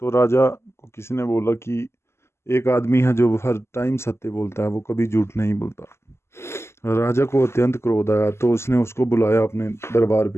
तो राजा को किसी ने बोला कि एक आदमी है जो हर टाइम सत्य बोलता है, वो कभी झूठ नहीं बोलता। राजा को अत्यंत क्रोध आया, तो उसने उसको बुलाया अपने दरबार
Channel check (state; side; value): late; right; 0.13 ms